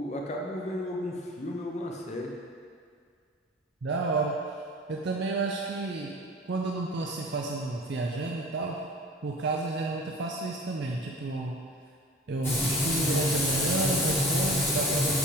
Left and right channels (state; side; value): normal; both; correlation 0.42